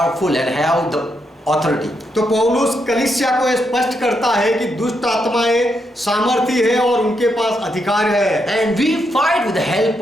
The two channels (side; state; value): both; normal; correlation 0.81